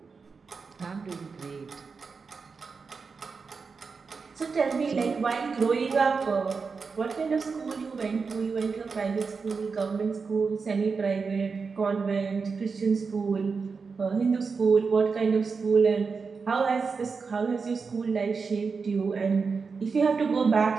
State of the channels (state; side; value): quieter; left; 5.0 dB